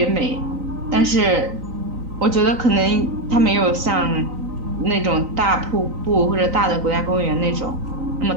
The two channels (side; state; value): left; late; 3.9 ms